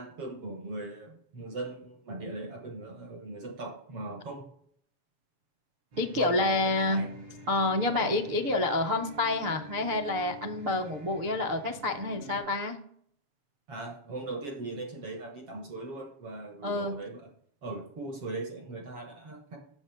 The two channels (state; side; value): late; left; 6.8 ms